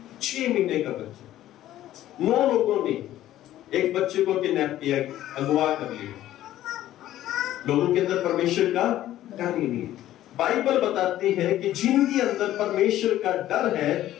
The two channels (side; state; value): right; quieter; 13.5 dB